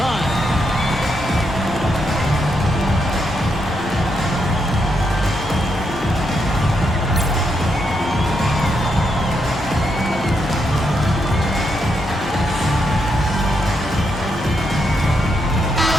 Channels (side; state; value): both; normal; correlation 0.80